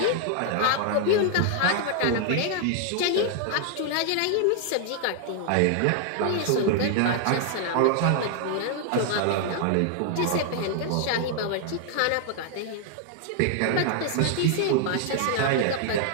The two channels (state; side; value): different; both; correlation 0.00